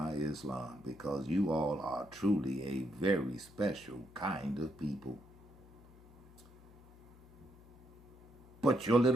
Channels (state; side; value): noise; left; hum, 22 dB below the sound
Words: Islam, because you all are truly a very special kind of people. But your